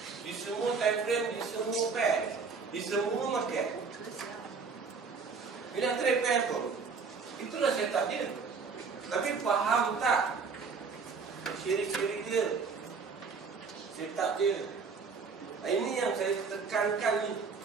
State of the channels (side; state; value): left; quieter; 5.1 dB